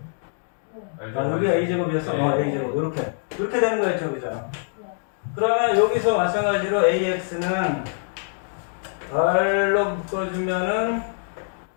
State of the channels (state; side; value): silent; right; digital silence